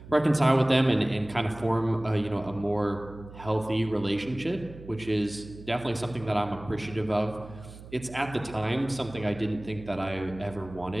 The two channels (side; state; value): right; noise; hum, 16 dB below the sound